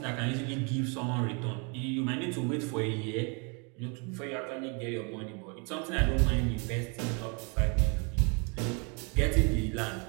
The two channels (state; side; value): quieter; left; 34.1 dB